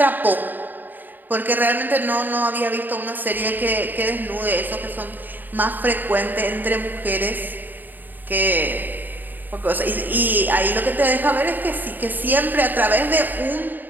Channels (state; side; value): late; left; 0.089 ms